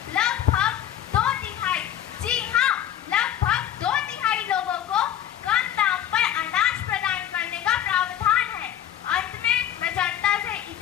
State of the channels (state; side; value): quieter; right; 11.0 dB